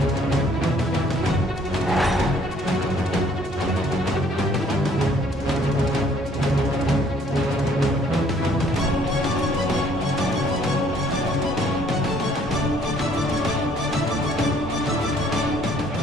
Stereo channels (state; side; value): normal; both; correlation 0.61